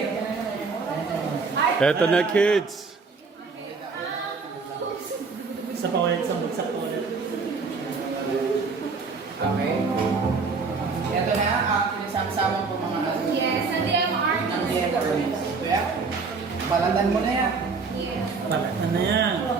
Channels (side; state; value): left; quieter; 4.6 dB